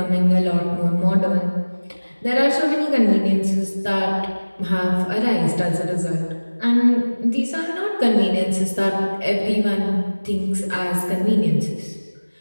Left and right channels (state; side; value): inverted; both; correlation -1.00